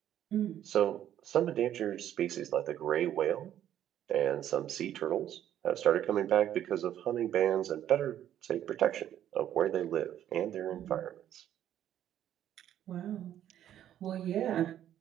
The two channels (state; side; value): quieter; left; 11.1 dB